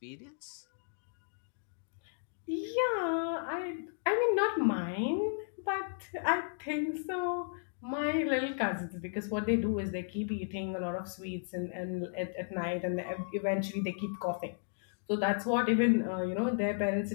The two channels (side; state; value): right; silent; digital silence